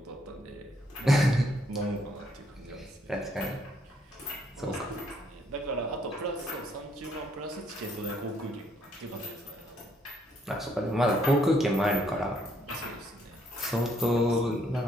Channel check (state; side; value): normal; both; correlation 0.69